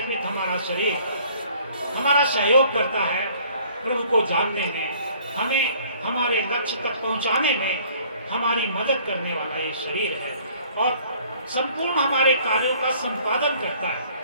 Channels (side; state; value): both; inverted; correlation -0.56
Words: हमारा शरीर हमारा सहयोग करता है प्रभु को जानने में, हमें हमारे लक्ष्य तक पहुंचाने में हमारी मदद करने वाला ये शरीर है और संपूर्ण हमारे कार्यों का संपादन करता है।